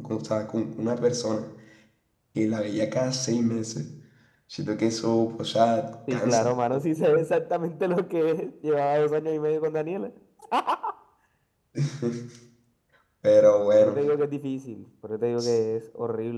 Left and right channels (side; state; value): both; identical; correlation 1.00